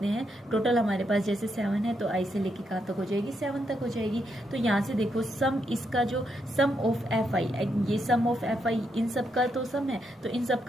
हैं, टोटल हमारे पास जैसे 7 है तो आई से लेके कहाँ तक हो जाएगी, 7 तक हो जाएगी। तो यहाँ से देखो सम, इसका जो सम ऑफ एफ आई, ये सम ऑफ एफ आई इन सब का तो सम है, तो इन सब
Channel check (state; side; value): normal; both; correlation 0.80